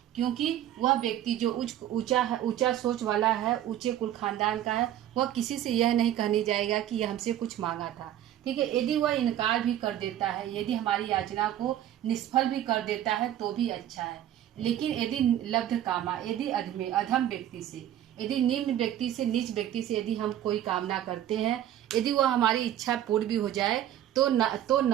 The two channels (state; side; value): quieter; left; 11.8 dB